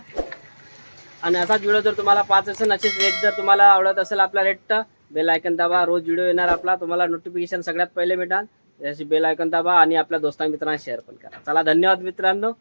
आणि असाच व्हिडिओ जर तुम्हाला पाच असेल असेच रेट जर तुम्हाला आवडत असेल आपला रेट बेल आयकन दाबा रोज व्हिडिओ येणार आपला तुम्हाला नोटिफिकेशन सगळ्यात पहिले भेटाल. जशी बेल आयकन दाबा आणि आपल्या दोस्तां मित्रांना शेअर पण करा. चला धन्यवाद मित्रांनो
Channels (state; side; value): inverted; both; correlation -1.00